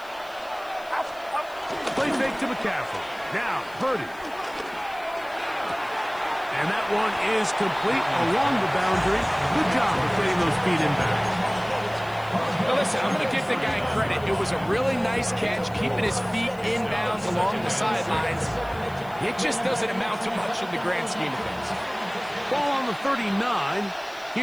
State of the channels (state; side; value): noise; left; hiss, 25 dB below the sound